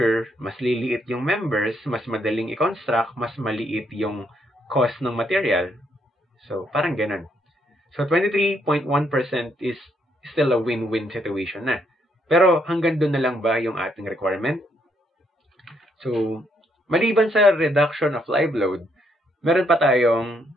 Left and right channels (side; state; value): both; normal; correlation 0.73